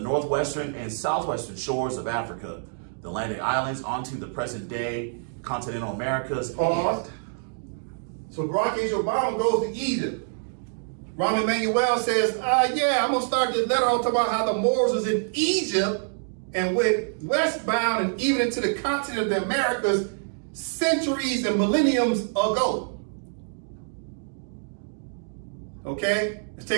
northwestern and southwestern shores of Africa, the Atlantic islands onto the present day continental Americas. Pause. So Barack H. Obama goes to Egypt. Rahm Emanuel says, yeah, I'm going to start this letter on talking about how the Moors was in Egypt and went westbound and even into the continent of the Americas centuries and millenniums ago. Okay, let's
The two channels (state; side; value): silent; left; digital silence